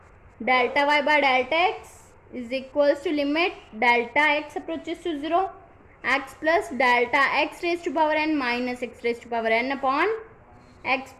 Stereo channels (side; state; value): both; identical; correlation 1.00